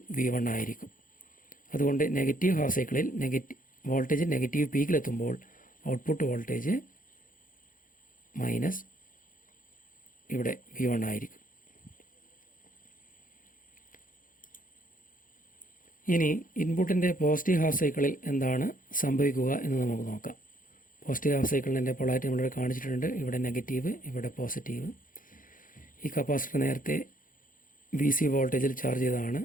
V1 ആയിരിക്കും. അതുകൊണ്ട് നെഗറ്റീവ് ഹാഫ് സൈക്കിളിൽ വോൾട്ടേജ് നെഗറ്റീവ് പീക്കിലെത്തുമ്പോൾ ഔട്ട്പുട്ട് വോൾട്ടേജ് മൈനസ് ഇവിടെ V1 ആയിരിക്കും. ഇനി ഇൻപുട്ടിൻ്റെ പോസിറ്റീവ് ഹാഫ് സൈക്കിളിൽ എന്താണ് സംഭവിക്കുക എന്ന് നമുക്ക് നോക്കാം. പോസിറ്റീവ് ഹാഫ് സൈക്കിളിൻ്റെ പൊളാരിറ്റി നമ്മളിവിടെ കാണിച്ചിട്ടുണ്ട്. ഇവിടെ നെഗറ്റീവ്, ഇവിടെ പോസിറ്റീവ്. ഈ കപ്പാസിറ്റർ നേരത്തെ VC വോൾട്ടേജിൽ ചാർജ് ചെയ്തതാണ്.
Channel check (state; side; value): late; right; 0.40 ms